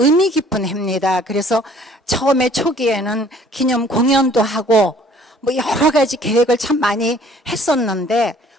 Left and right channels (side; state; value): both; normal; correlation 0.56